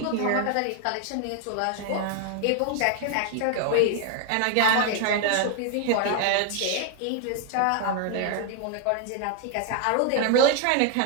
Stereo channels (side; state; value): both; different; correlation 0.00